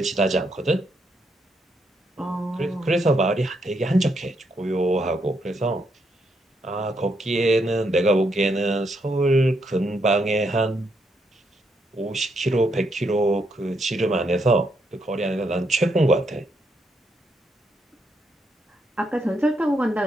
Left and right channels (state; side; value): normal; both; correlation 0.77